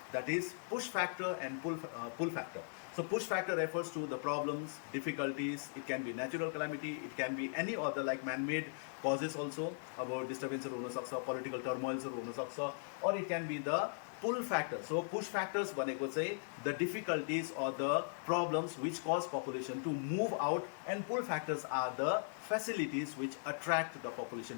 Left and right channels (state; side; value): silent; right; 52 dB below the other